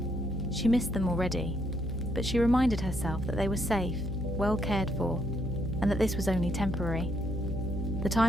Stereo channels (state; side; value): noise; left; hum, 8 dB below the sound